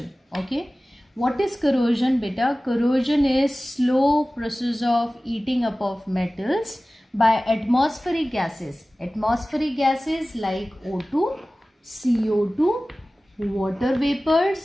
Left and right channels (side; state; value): both; normal; correlation 0.97